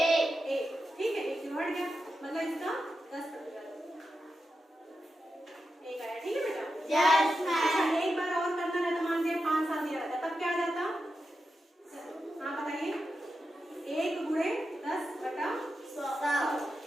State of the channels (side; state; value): both; normal; correlation 0.89